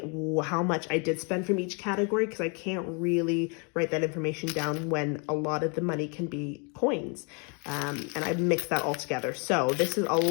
how much I did spend from each category, because I can't really write that information down when a lot of the money can be coins. And I mix that all together. So this is a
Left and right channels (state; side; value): quieter; right; 35.2 dB